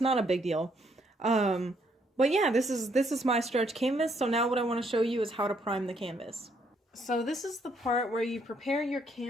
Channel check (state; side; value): normal; both; correlation 0.70